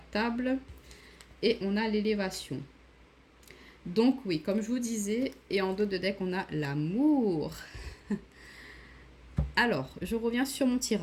table et on a l'élévation. Donc oui, comme je vous disais, et en dos de deck, on a l'amour. Alors, je reviens sur mon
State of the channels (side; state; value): both; identical; correlation 1.00